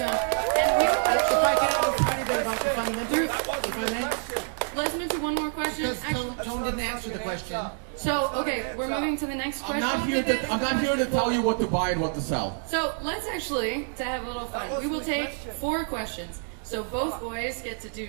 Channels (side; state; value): left; silent; 60 dB below the other